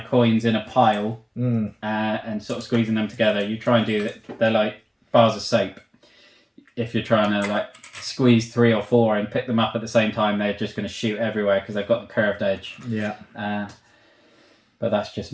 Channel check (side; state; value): both; identical; correlation 1.00